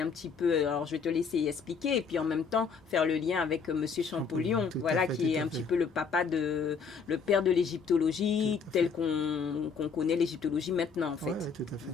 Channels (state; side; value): quieter; right; 5.6 dB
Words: petit peu... Alors, je vais te laisser expliquer. Et puis, en même temps, faire le lien avec Monsieur Champollion. Voilà, qui est un petit peu le père de l'égyptologie, tel qu'on connaît l'égyptologie maintenant, en fait. Oui, tout à fait.